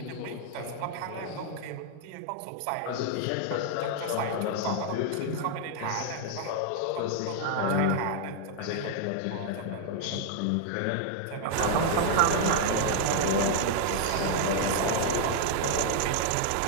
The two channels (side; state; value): both; different; correlation 0.00